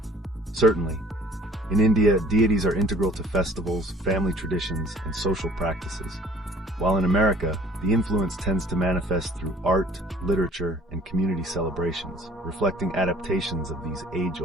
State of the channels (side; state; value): both; normal; correlation 0.54